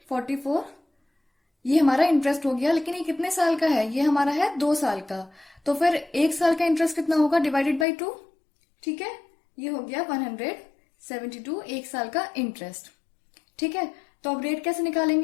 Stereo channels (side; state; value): right; drops out; at 7.9 s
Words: ये हमारा इंटरेस्ट हो गया, लेकिन ये कितने साल का है, ये हमारा है 2 साल का। तो फिर 1 साल का इंटरेस्ट कितना होगा, डिवाइडेड बाई 2। ठीक है, ये हो गया 172 1 साल का इंटरेस्ट। ठीक है, तो अब रेट कैसे